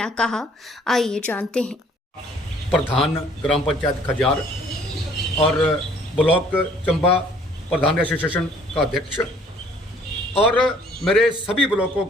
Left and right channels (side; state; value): both; normal; correlation 0.58